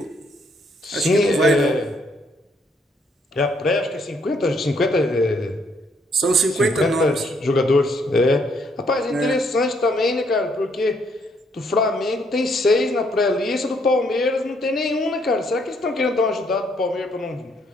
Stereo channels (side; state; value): both; normal; correlation 0.70